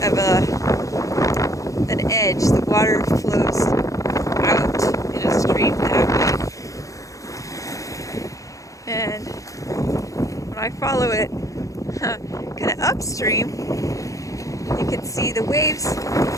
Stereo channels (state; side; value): late; right; 0.16 ms